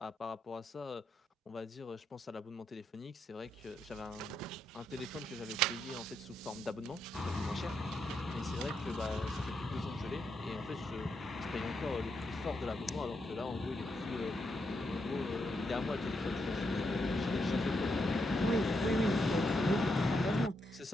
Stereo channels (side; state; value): both; normal; correlation 0.81